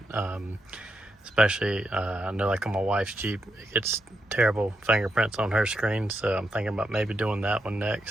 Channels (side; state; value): both; normal; correlation 0.83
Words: Especially, I know like on my wife's Jeep, it gets terrible fingerprints on her screen, so I'm thinking about maybe doing that one